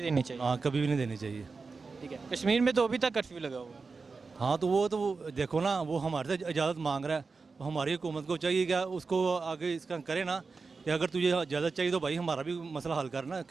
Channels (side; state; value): left; quieter; 4.4 dB